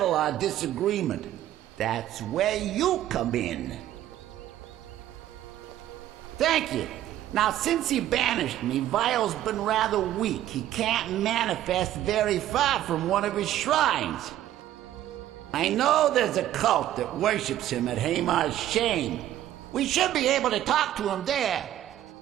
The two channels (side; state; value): left; quieter; 12.7 dB